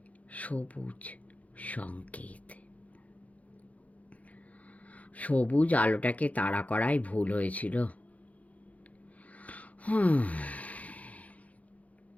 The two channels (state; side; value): late; right; 0.069 ms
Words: সবুজ সংকেত। সবুজ আলোটাকে তাড়া করাই ভুল হয়েছিল।